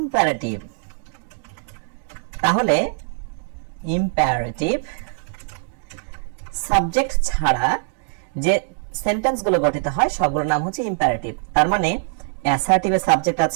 তাহলে ইম্পারেটিভ সাবজেক্ট ছাড়া যে সেন্টেন্সগুলো গঠিত হয় সবগুলোর নাম হচ্ছে ইম্পারেটিভ। তার মানে অ্যাসার্টিভে সাবজেক্ট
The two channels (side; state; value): left; silent; digital silence